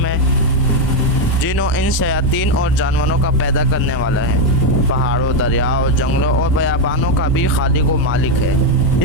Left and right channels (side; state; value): both; normal; correlation 0.04